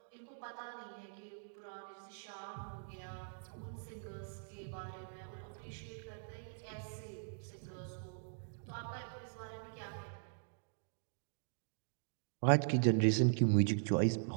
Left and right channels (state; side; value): silent; left; digital silence